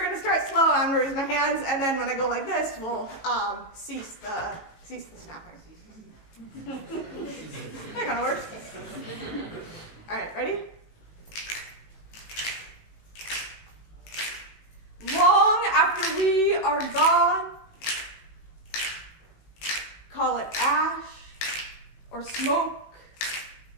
gonna start slow, I'm gonna raise my hands, and then when I go like this, we'll cease the snapping. That kind of works. All right, ready? Long after we are gone, call it ash or smoke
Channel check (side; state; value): right; late; 18 ms